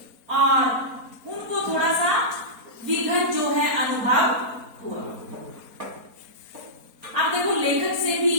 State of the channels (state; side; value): late; left; 4.3 ms